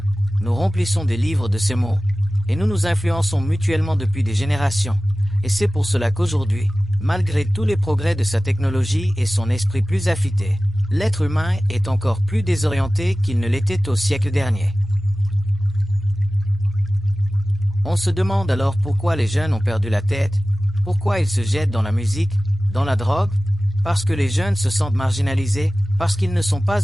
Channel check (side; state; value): both; normal; correlation 0.96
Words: nous remplissons des livres de ces mots, et nous nous influençons mutuellement depuis des générations. Et c'est pour cela qu'aujourd'hui, malgré tous les progrès de sa technologie et son esprit plus affûté, l'être humain est encore plus désorienté qu'il ne l'était au siècle dernier. On se demande alors pourquoi les jeunes ont perdu la tête, pourquoi ils se jettent dans la musique, dans la drogue, parce que les jeunes se sentent marginalisés, parce qu'ils ne sont pas